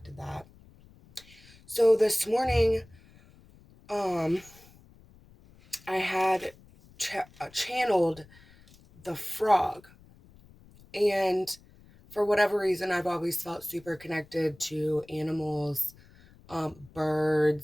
that. So this morning, um, I had channeled the frog, and for whatever reason, I've always felt super connected to animals,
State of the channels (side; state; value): left; noise; rumble, 25 dB below the sound